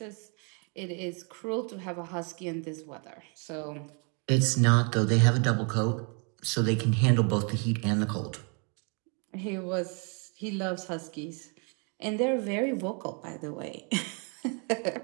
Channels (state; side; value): quieter; left; 36.4 dB